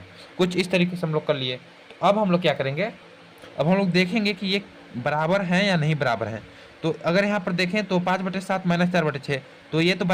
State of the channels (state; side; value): identical; both; correlation 1.00